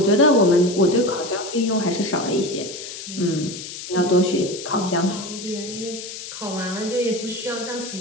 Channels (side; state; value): left; noise; hiss, 10 dB below the sound